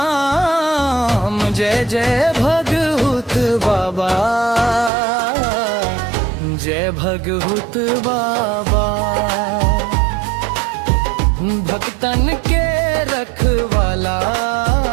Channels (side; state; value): left; drops out; at 4.9 s